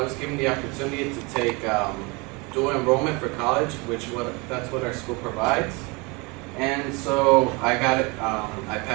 given the opportunity to take dual enrollment for college, that's what our school provides. And so I got it, I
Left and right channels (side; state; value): left; quieter; 27.9 dB